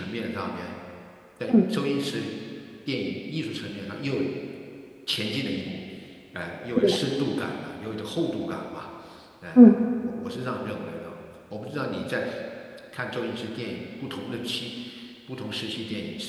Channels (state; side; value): identical; both; correlation 1.00